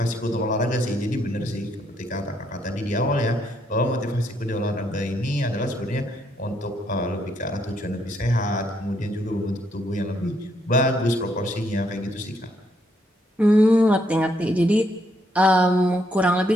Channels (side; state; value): both; normal; correlation 0.73